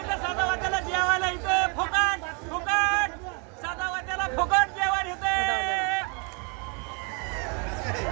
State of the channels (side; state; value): left; quieter; 35.1 dB